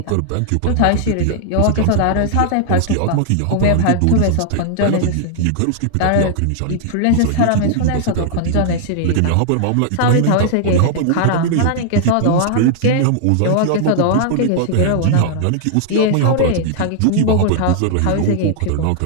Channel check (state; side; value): different; both; correlation -0.01